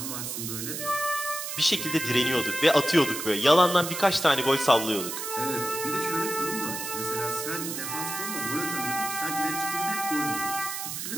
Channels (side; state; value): right; noise; hiss, 5 dB below the sound